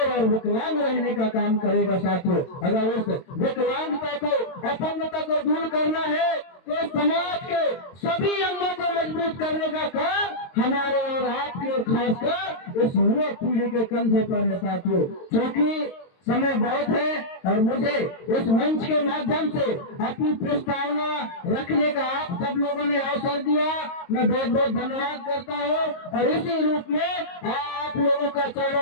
और विकलांग रहने का काम करेगा साथियों। अगर उस विकलांगता को, अपंगता को दूर करना है तो समाज के सभी अंगों को मजबूत करने का काम हमारे और आपके और खासकर इस युवा पीढ़ी के कंधे पर है साथियों। क्योंकि समय बहुत है और मुझे इस मंच के माध्यम से अपनी प्रस्तावना रखने का आप सब लोगों ने अवसर दिया, मैं बहुत बहुत धन्यवाद करता हूँ। और इसी रूप में आप लोगों का चरणों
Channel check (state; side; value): late; right; 22 ms